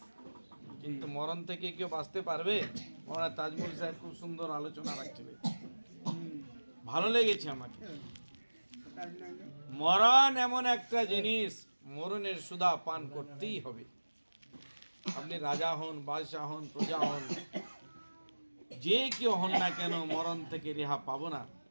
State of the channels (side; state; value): both; inverted; correlation -1.00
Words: কিন্তু মরণ থেকে কেউ বাঁচতে পারবে? মৌলানা তাজমুল সাহেব খুব সুন্দর আলোচনা রাখছিলেন, ভালো লেগেছে আমাকে। মরণ এমন একটা জিনিস, মরণের সুধা পান করতেই হবে। আপনি রাজা হন, বাদশাহ হন, প্রজা হন, যে কেউ হন না কেন, মরণ থেকে রেহা পাবো না।